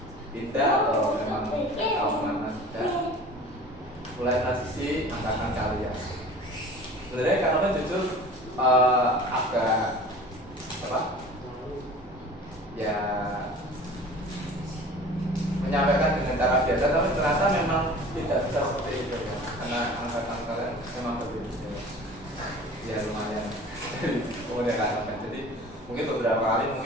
pindah atau memang tahu mana sudah mulai transisi angkatan kalian. Sebenarnya Kak Novel jujur agak ya menyampaikan dengan cara biasa, tapi ternyata memang tidak bisa seperti itu ya, karena angkatan kalian memang berbeda ya lumayan kemudian Kak Novel. Jadi mungkin beberapa kali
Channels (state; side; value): normal; both; correlation 0.42